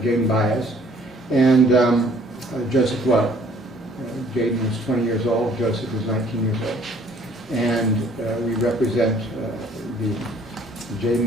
Jaden Baez, and Joseph Lowe. Jaden was 20 years old, Joseph was 19 years old. And we represent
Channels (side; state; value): both; normal; correlation 0.58